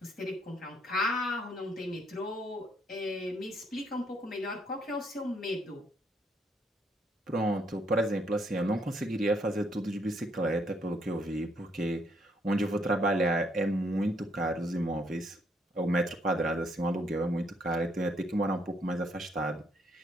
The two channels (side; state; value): both; normal; correlation 0.71